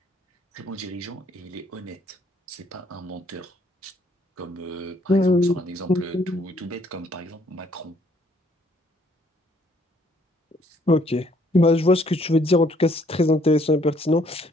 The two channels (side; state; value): both; normal; correlation 0.65